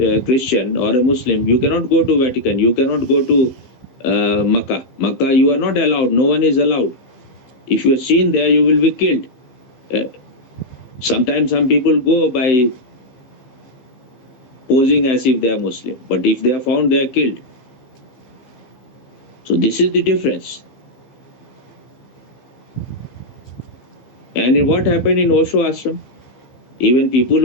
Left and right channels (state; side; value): late; right; 15 ms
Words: Christian or a Muslim, you cannot go to Vatican. You cannot go to Makkah. Makkah, you are not allowed. No one is allowed. If you are seen there, you will be killed. Sometimes some people go by posing as if they are Muslim. But if they are found, they are killed. So this is the difference. And what happened in Osho ashram? Even people